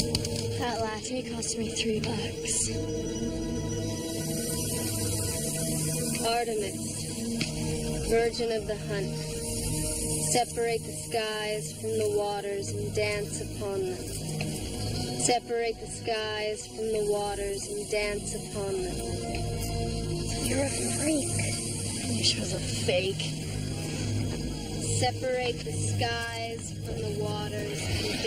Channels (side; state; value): both; identical; correlation 1.00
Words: That latte cost me $3. Artemis, virgin of the hunt, separate the skies from the waters and dance upon them. Separate the skies from the waters and dance upon them. You're a freak. I wish it was a fake. Separate the skies from the waters and